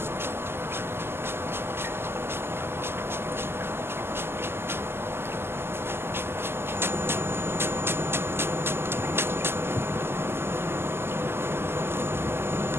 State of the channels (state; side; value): late; left; 0.12 ms